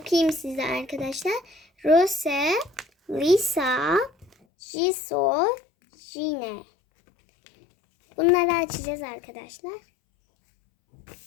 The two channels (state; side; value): drops out; right; at 4.3 s